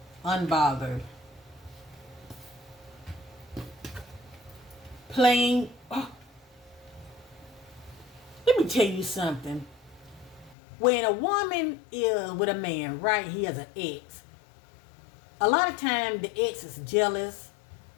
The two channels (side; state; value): right; drops out; at 10.6 s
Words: Unbothered. Plain. Oh, let me tell you something. When a woman is with a man, right, he has an ex. A lot of time the ex is jealous